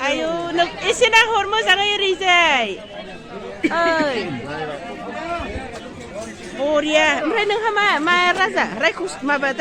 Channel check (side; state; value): both; identical; correlation 1.00